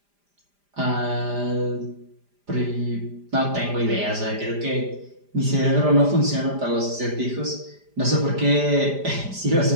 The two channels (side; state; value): left; late; 5.0 ms